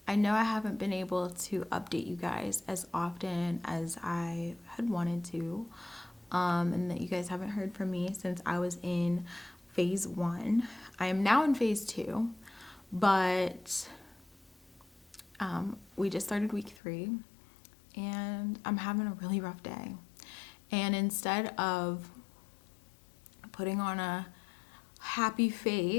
I know I haven't been able to update you guys as often as I had wanted to, and that you guys haven't heard from me since I was in phase 1. I am now in phase 2, but we just started week 3, and I'm having a really rough day. And instead of putting on a happy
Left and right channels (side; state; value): right; drops out; at 16.8 s